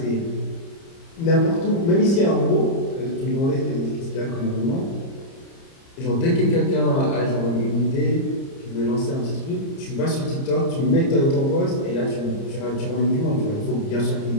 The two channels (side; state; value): right; late; 30 ms